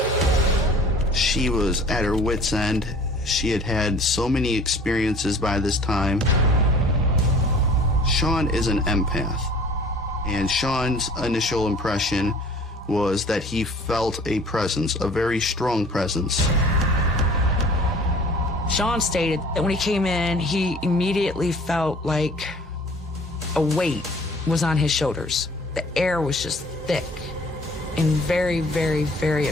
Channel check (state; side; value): normal; both; correlation 0.49